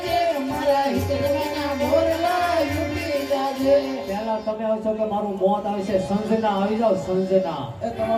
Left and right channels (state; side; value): identical; both; correlation 1.00